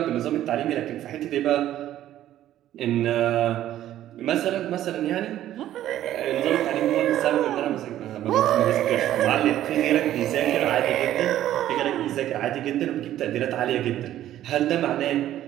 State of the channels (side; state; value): left; quieter; 12.6 dB